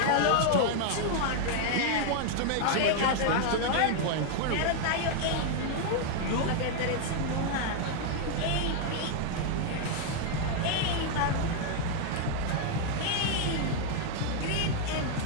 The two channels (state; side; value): different; both; correlation 0.00